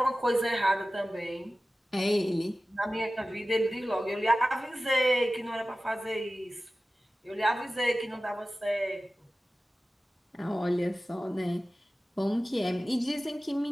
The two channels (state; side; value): normal; both; correlation 0.95